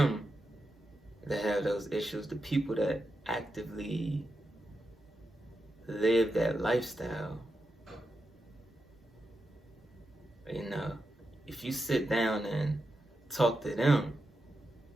that have those issues. The people that actively live that lifestyle, if you sit down and talk to them,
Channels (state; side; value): normal; both; correlation 0.87